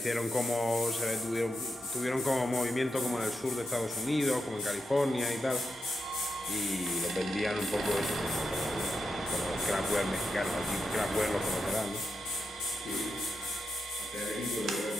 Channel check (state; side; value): normal; both; correlation 0.86